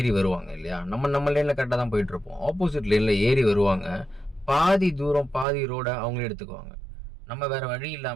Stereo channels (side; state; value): left; drops out; at 5.5 s